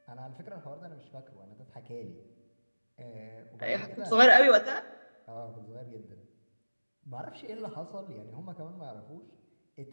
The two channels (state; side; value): inverted; both; correlation -1.00